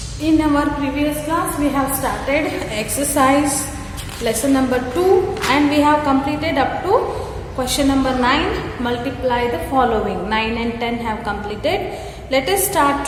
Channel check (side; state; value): both; identical; correlation 1.00